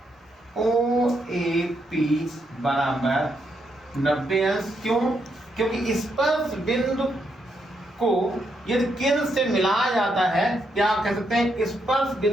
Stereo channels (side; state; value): both; normal; correlation 0.79